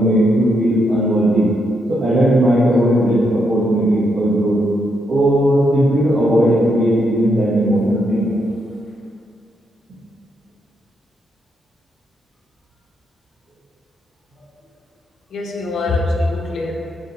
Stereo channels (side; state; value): both; normal; correlation 0.79